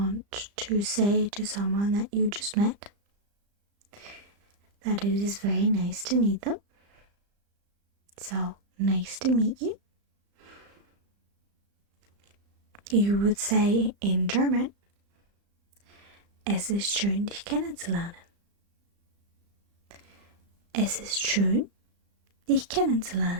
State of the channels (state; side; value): late; left; 35 ms